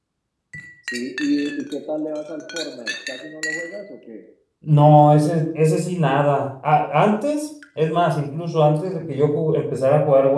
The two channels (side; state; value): both; identical; correlation 1.00